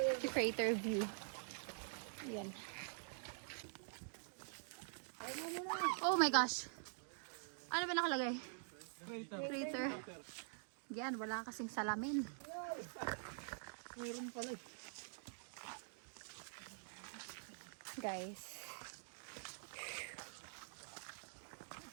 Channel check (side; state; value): left; silent; digital silence